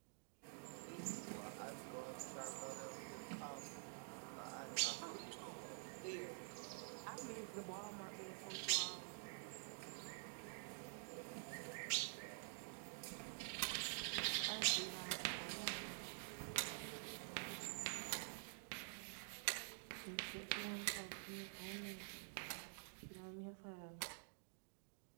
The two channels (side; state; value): left; silent; digital silence